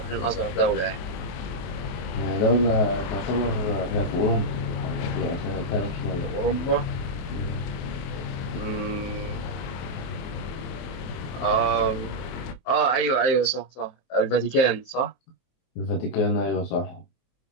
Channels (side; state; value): right; late; 23 ms